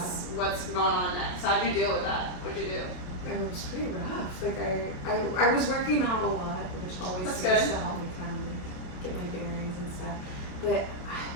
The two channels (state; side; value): late; right; 28 ms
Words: going on next? How'd you deal with that? What'd you do? It was pretty rough. Like I was working out a lot, which always seems to help me kind of get my bearings and stuff. But